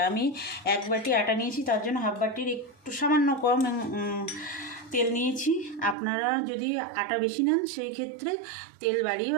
আমি এক বাটি আটা নিয়েছি, তার জন্য হাফ বাটির একটু সামান্য কম তেল নিয়েছি। আপনারা যদি আটা বেশি নেন সেই ক্ষেত্রে তেল বাড়িয়ে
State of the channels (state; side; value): drops out; left; at 6.0 s